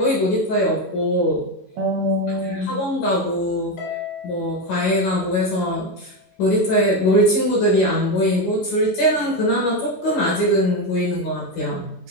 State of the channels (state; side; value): normal; both; correlation 0.11